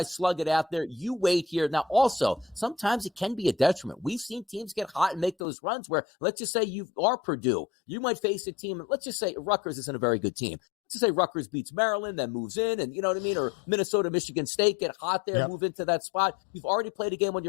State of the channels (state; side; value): drops out; right; at 5.4 s